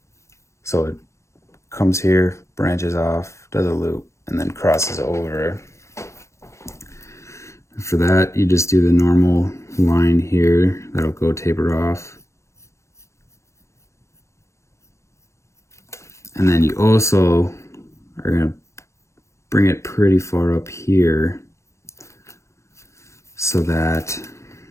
So it comes here, branches off, does a loop, and then crosses over. For that, you just do the normal line here that'll go taper off. And then you also are gonna bring it pretty far up here so that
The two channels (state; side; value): late; right; 0.14 ms